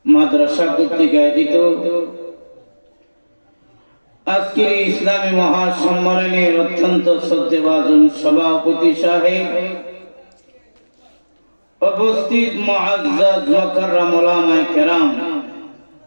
মাদ্রাসা কর্তৃক আয়োজিত আজকের ইসলামী মহাসম্মেলনের অত্যন্ত শ্রদ্ধেভাজন সভাপতি সাহেব, উপস্থিত মুআজ্জাজ মুকাররম উলামায়ে কেরাম,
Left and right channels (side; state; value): both; inverted; correlation -1.00